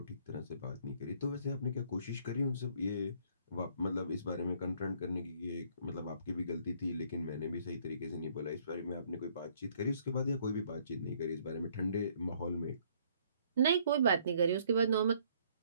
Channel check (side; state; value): both; inverted; correlation -0.63